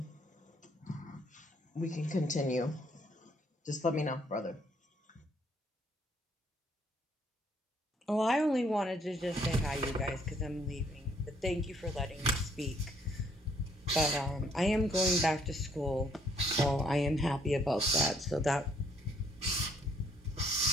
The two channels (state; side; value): normal; both; correlation 0.66